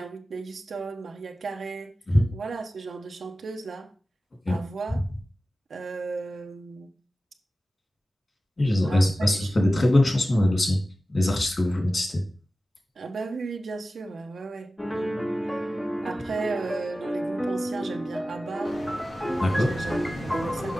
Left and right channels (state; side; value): normal; both; correlation 0.95